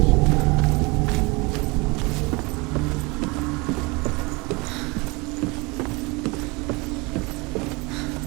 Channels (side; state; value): left; quieter; 26.5 dB